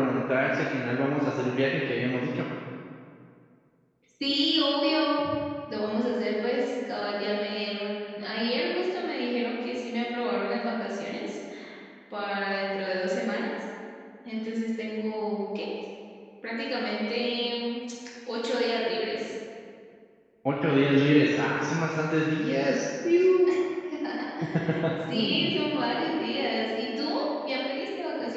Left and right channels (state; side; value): identical; both; correlation 1.00